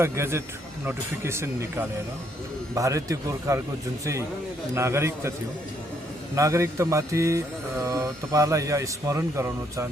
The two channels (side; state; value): both; normal; correlation 0.71